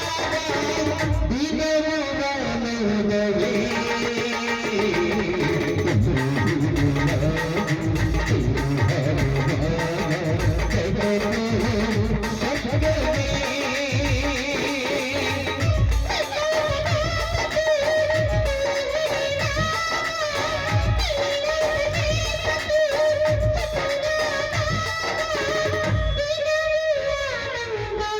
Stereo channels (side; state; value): both; identical; correlation 1.00